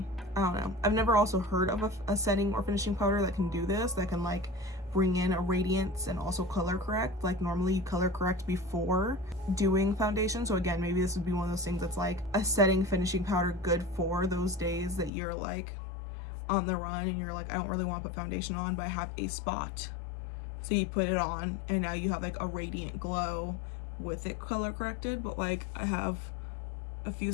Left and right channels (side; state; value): right; drops out; at 15.1 s